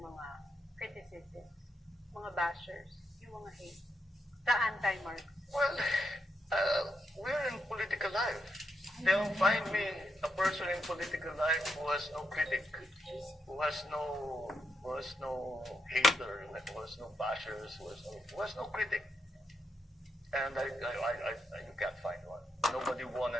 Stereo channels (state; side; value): normal; both; correlation 0.82